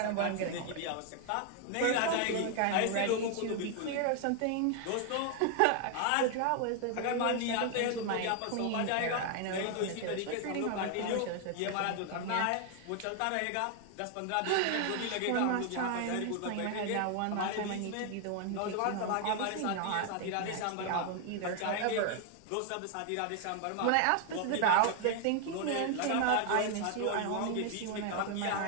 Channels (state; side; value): different; both; correlation 0.00